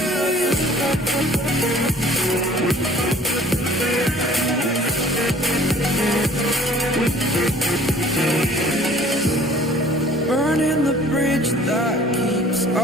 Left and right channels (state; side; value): normal; both; correlation 0.51